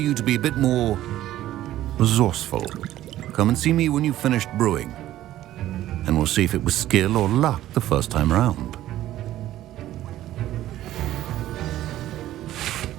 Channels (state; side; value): quieter; left; 13.8 dB